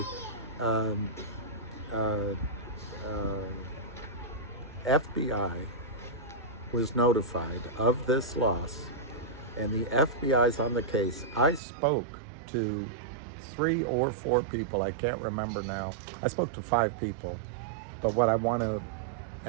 FBI was notified of this loss, and the FBI's on the case. I spoke to 3 or 4 people, I can't remember now. I spoke to 5 people, but what I want to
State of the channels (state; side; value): drops out; left; at 11.6 s